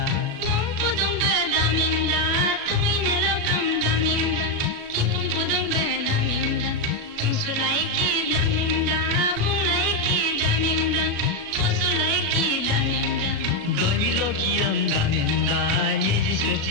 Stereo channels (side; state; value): left; late; 36 ms